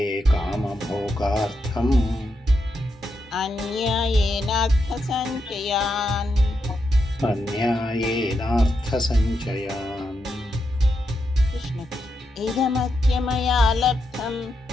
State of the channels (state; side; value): normal; both; correlation 0.84